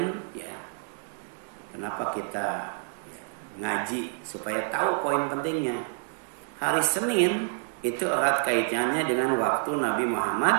ya. Kenapa kita ya, ngaji supaya tahu poin pentingnya. Hari Senin itu erat kaitannya dengan waktu Nabi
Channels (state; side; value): silent; left; 59 dB below the other